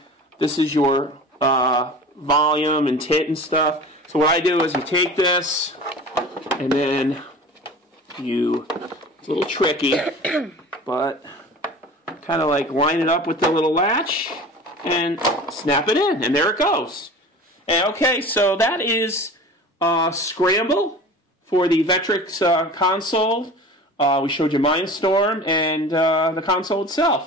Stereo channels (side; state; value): both; normal; correlation 0.38